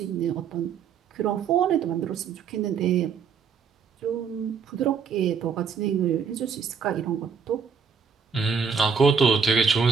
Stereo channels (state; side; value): quieter; left; 6.2 dB